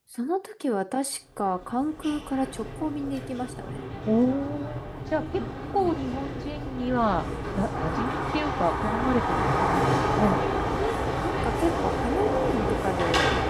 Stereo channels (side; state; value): both; identical; correlation 1.00